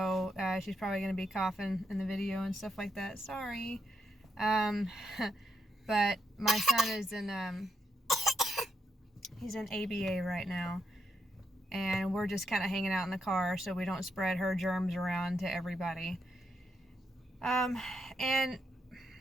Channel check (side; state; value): both; normal; correlation 0.80